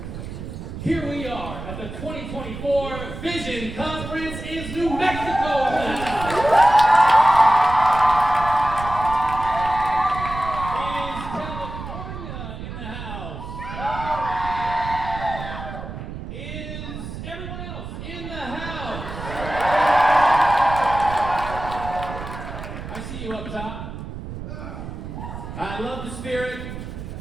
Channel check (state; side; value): noise; right; rumble, 9 dB below the sound